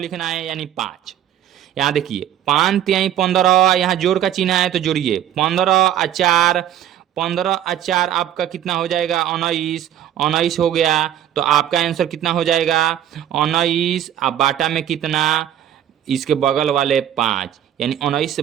है, यानी 5। यहाँ देखिए 5 तिहाई 15, यहाँ जोड़ का चिन्ह है तो जोड़िए 15 और 4, 15 और 4 आपका कितना हो जाएगा? 19, 19 हो गया। तो आपका आंसर कितना हो जाएगा? 19। अब बाटा में कितना? इसके बगल वाले 5, यानी 19 से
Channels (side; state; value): left; quieter; 11.0 dB